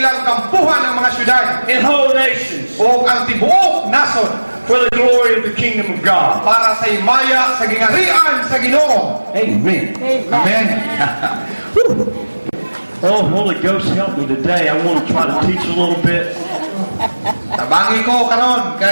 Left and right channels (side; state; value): both; inverted; correlation -1.00